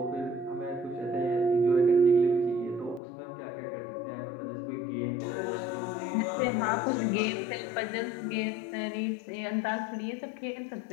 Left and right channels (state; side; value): drops out; right; at 3.0 s